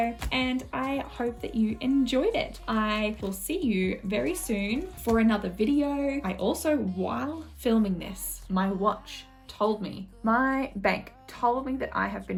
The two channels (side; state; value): both; identical; correlation 1.00